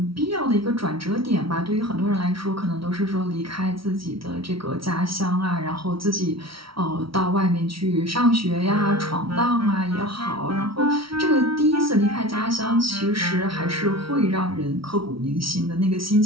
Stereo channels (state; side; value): late; left; 0.75 ms